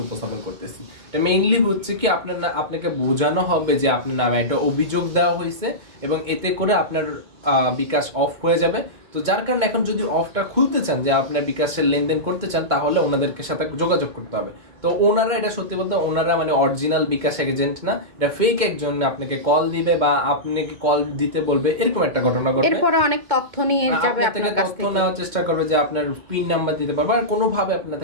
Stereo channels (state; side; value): late; left; 2.1 ms